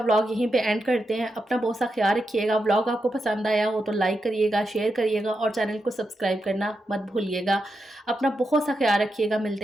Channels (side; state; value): both; normal; correlation 0.86